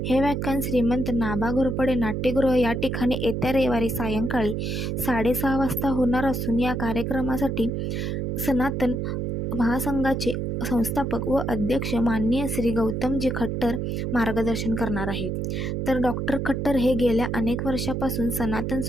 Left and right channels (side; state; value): right; noise; hum, 1 dB below the sound